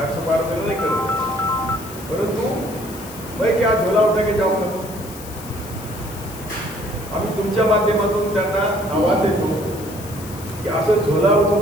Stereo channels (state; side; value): noise; left; hiss, 16 dB below the sound